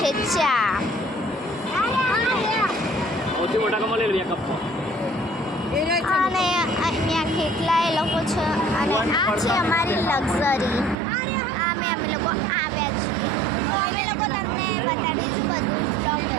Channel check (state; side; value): drops out; left; at 11.0 s